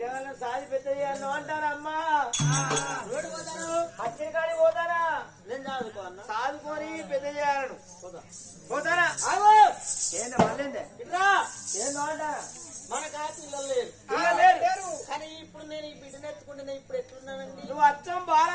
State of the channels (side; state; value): both; identical; correlation 1.00